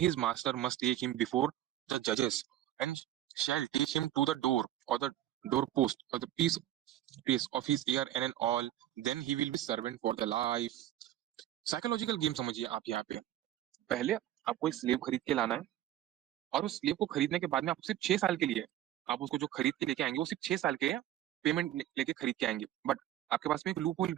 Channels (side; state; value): left; quieter; 12.7 dB